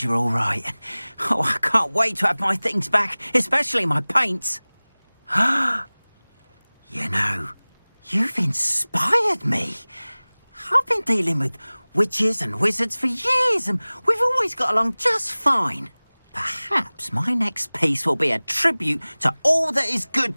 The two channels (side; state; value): both; inverted; correlation -1.00